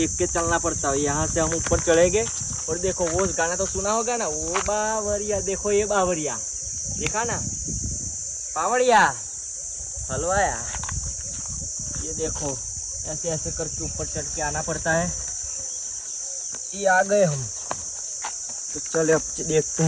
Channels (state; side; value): identical; both; correlation 1.00